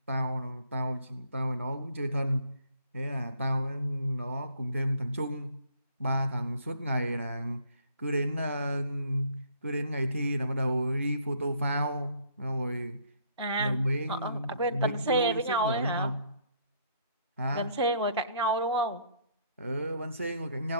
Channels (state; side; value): inverted; both; correlation -0.63